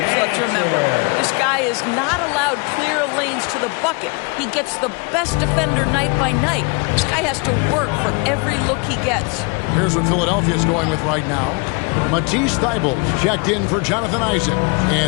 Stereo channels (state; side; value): quieter; right; 31.6 dB